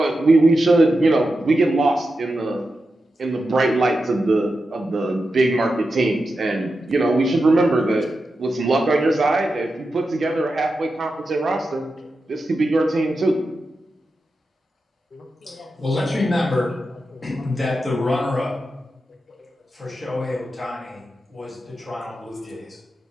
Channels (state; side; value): normal; both; correlation 0.90